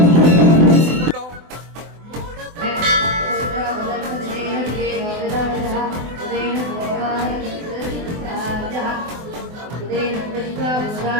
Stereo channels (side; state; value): left; late; 24 ms